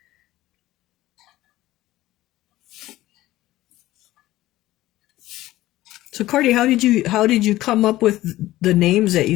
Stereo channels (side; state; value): right; quieter; 16.1 dB